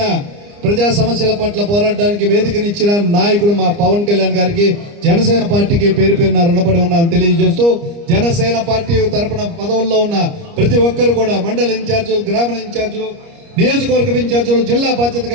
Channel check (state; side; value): late; left; 29 ms